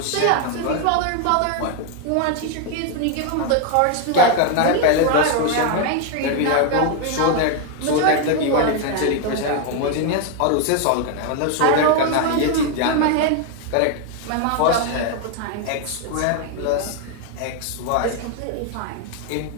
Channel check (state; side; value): different; both; correlation 0.01